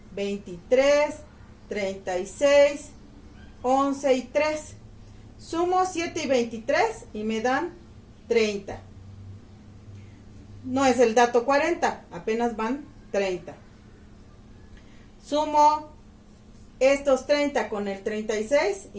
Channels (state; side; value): identical; both; correlation 1.00